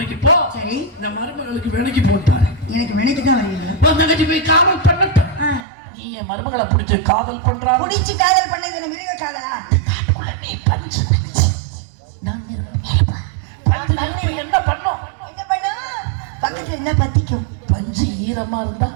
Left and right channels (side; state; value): left; drops out; at 5.7 s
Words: போ. சரி. இந்த மருமகளுக்கு வேலைக்கு போட்டாரு. எனக்கு வேலைக்கு தான் வரீங்க. தங்கச்சி போய் காவல் பண்ணட்டும். நீ என் மருமகளை பிடிச்சு காவல் பண்றா. பிடிச்சு காதல் பண்ணது மிருக காதலா? நீ பஞ்சு என்ன பண்ணும்? என்ன பண்ணும்? பக்கத்துல என்ன பத்திக்கும்? பஞ்சு ஈரமா இருந்தா